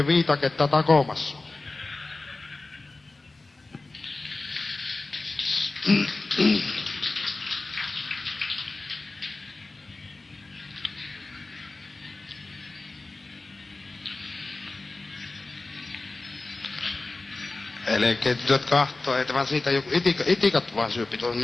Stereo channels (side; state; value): right; quieter; 3.3 dB